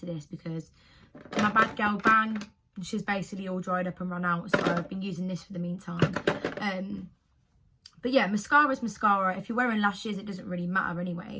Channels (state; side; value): identical; both; correlation 1.00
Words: this because my Bad Girl Bang, she's basically all dried up and run out. So I've been using this for the meantime. But yeah, mascara is mascara. If you're wearing lashes, it doesn't really matter